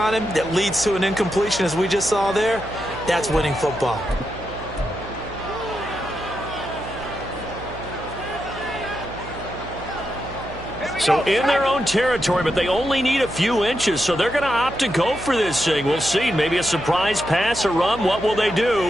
him that leads to an incompletion, as we just saw there, that's winning football. So in their own territory, but they only need a few inches, so they're going to opt to go for this thing. We'll see. Maybe a surprise pass, a run. What will they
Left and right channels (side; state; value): right; noise; hum, 14 dB below the sound